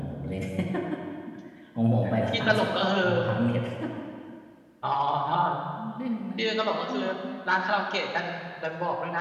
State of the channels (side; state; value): both; identical; correlation 1.00